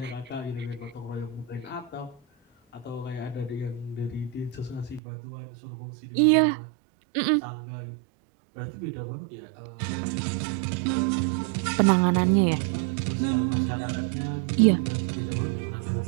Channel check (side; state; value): left; drops out; at 5.0 s